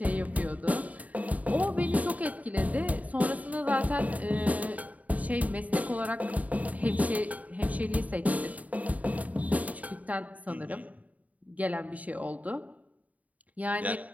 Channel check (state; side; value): late; left; 0.072 ms